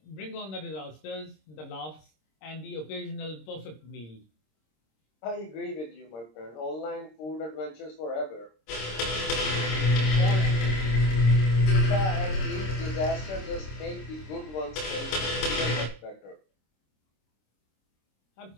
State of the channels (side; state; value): right; late; 26 ms